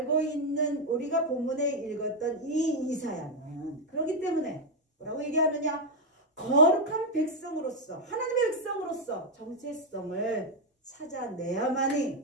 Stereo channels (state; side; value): normal; both; correlation 0.02